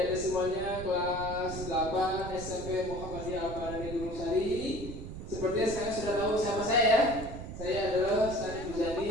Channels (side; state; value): right; noise; rumble, 9 dB below the sound